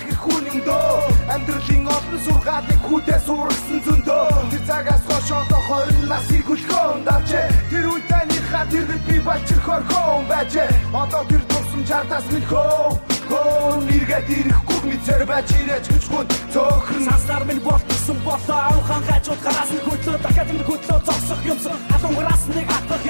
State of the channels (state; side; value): inverted; both; correlation -1.00